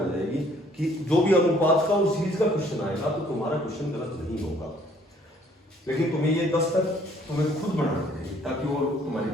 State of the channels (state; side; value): normal; both; correlation 0.61